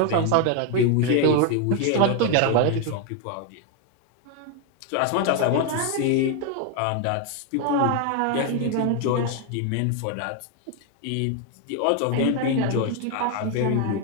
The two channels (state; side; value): different; both; correlation 0.01